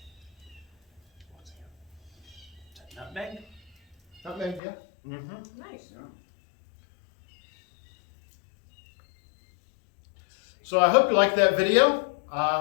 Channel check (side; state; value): right; drops out; at 4.6 s